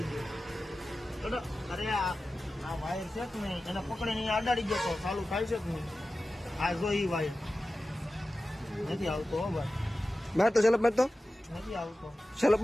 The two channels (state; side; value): normal; both; correlation 0.94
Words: ગયો અરે આ વાયર છે કે નહીં એને પકડીને અડાડી ગયો તો ચાલુ થાય છે કે નહીં આ જો ઈ વાયર નથી આવતો હો ભાઈ માર તો સેલપ માર તો નથી આવતો સેલપ